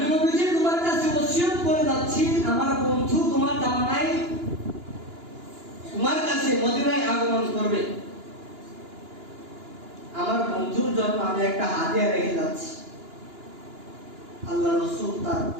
নবীজি তোমার কাছে ওসিয়ত করে যাচ্ছি, আমার বন্ধু তোমার জামানায় তোমার কাছে মদিনায় আগমন করবে, আমার বন্ধুর জন্য আমি একটা হাদিয়া রেখে যাচ্ছি। আল্লাহ রাসূল তার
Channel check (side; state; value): left; late; 2.9 ms